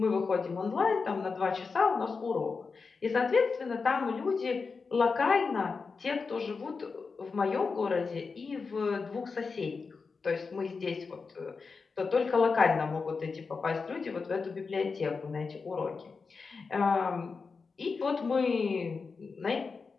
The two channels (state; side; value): quieter; right; 4.7 dB